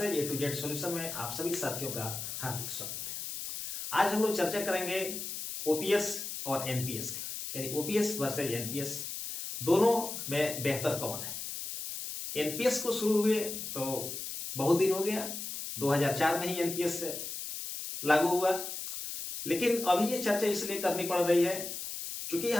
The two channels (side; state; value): left; noise; hiss, 6 dB below the sound